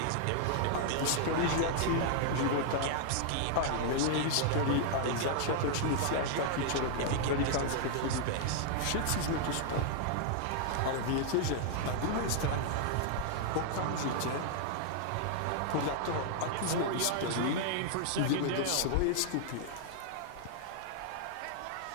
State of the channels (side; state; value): both; different; correlation -0.01